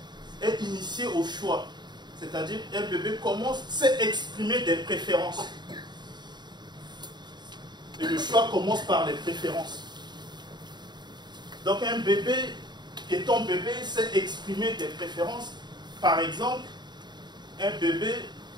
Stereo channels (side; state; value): left; late; 0.21 ms